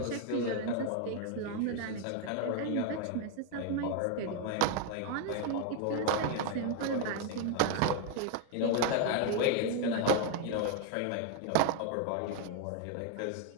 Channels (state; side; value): different; both; correlation 0.01